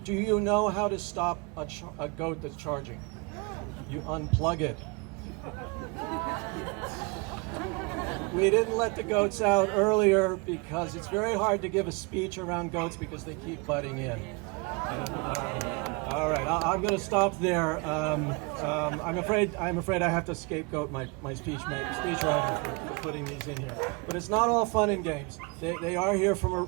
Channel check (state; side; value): quieter; left; 29.6 dB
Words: do you know how to stop a goat that's charging? You unplug it. We didn't let the goats out earlier because it's very hard to give a speech around goats because they keep butting in. All right, I'm going to stop there. I'm afraid I have to scapegoat my speechwriter for putting these in here. But it's not all fun and games. They are here for